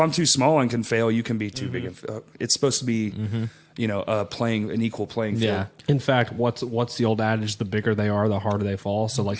I'm too small and can fail, you can be too big. It's supposed to be, playing an equal playing field. Yeah. In fact, what's the old adage? The bigger they are, the harder they fall. So, like,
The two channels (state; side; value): identical; both; correlation 1.00